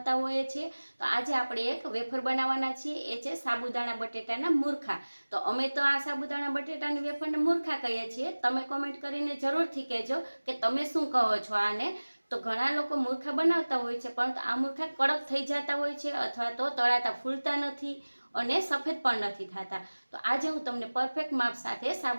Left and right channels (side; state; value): both; inverted; correlation -1.00